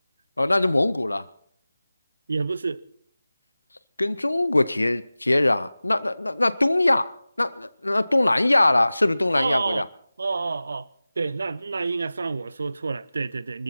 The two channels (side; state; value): both; inverted; correlation -0.97